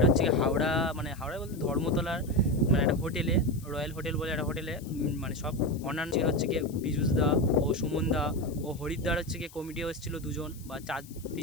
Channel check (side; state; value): left; noise; hiss, 21 dB below the sound